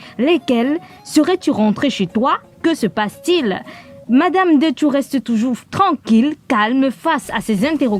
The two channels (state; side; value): identical; both; correlation 1.00